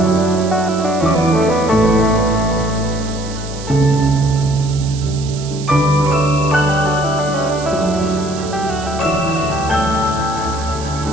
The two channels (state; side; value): noise; right; hiss, 14 dB below the sound